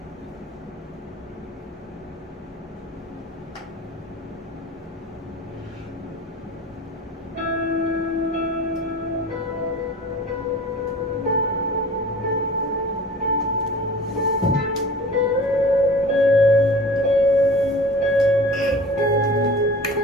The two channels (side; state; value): both; normal; correlation 0.42